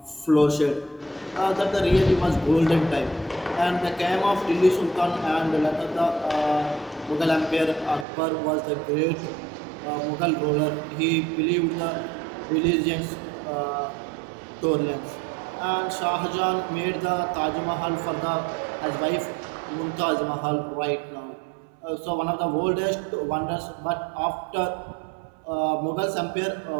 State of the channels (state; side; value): drops out; left; at 8.1 s